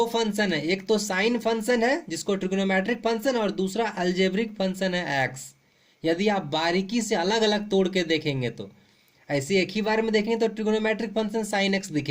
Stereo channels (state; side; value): identical; both; correlation 1.00